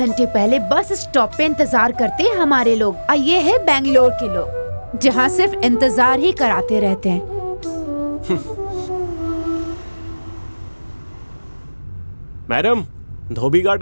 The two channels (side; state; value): both; inverted; correlation -1.00